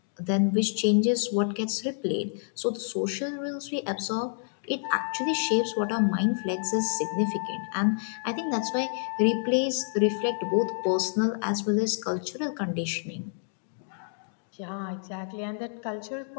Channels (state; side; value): silent; right; digital silence